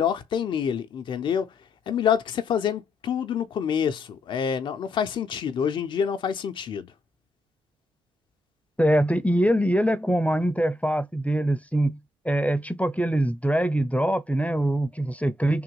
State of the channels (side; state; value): both; normal; correlation 0.81